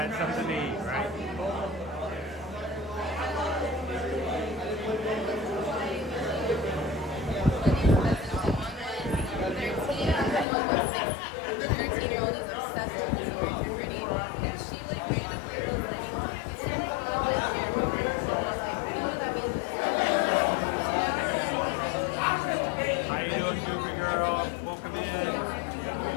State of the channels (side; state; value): right; drops out; at 10.5 s